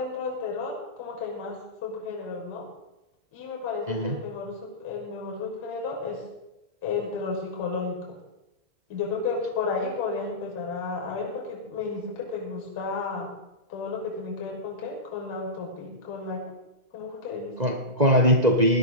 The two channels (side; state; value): left; late; 2.0 ms